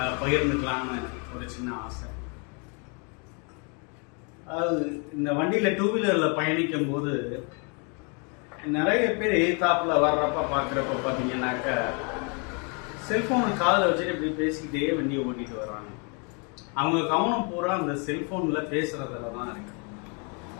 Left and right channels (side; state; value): right; quieter; 35.5 dB